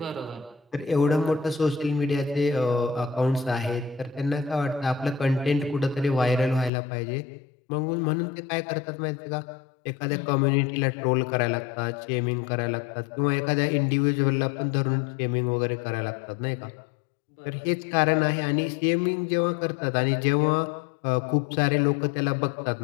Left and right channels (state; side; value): drops out; right; at 6.7 s